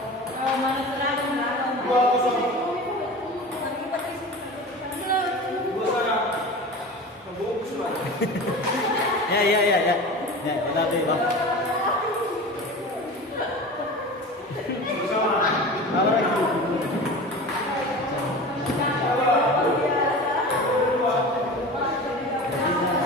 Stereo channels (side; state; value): both; normal; correlation 0.33